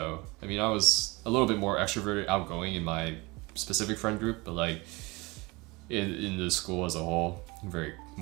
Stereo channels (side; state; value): left; quieter; 24.3 dB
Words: I mean, I was a little bit more extroverted, outgoing in my specific friend group, but like in the school as a whole, I'm very